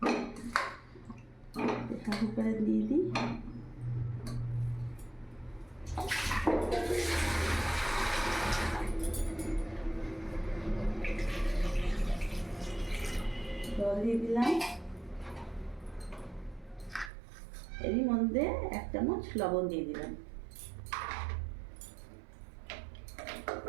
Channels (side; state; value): left; drops out; at 17.1 s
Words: প্রেসার কুকারে দিয়ে দিই। জল দিয়ে দিলাম, এরই মধ্যে 1 চামচ লবণ দিয়ে দিলাম।